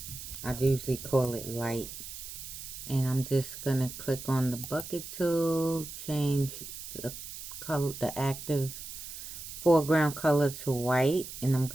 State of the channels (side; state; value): right; noise; hiss, 10 dB below the sound